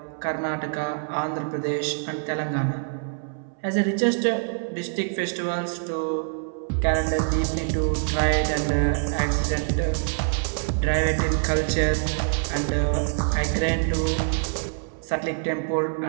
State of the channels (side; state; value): left; silent; 60 dB below the other